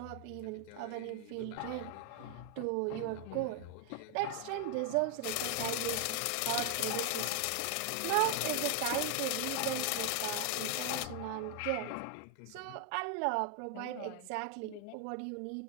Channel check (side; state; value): both; different; correlation 0.00